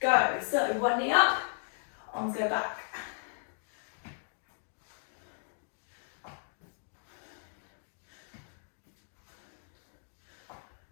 So one knee up, arms go back.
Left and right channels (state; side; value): silent; right; digital silence